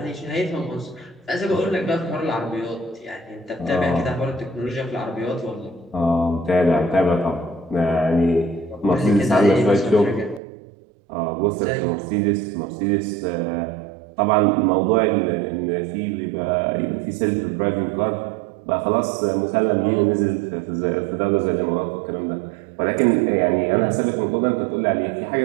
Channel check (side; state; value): left; drops out; at 10.4 s